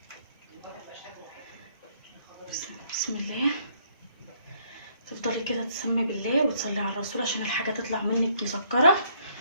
بسم الله. تفضلي كده تسمي بالله وتصلي على الرسول عشان الحاجه تطلع منك مسكره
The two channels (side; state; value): both; inverted; correlation -0.66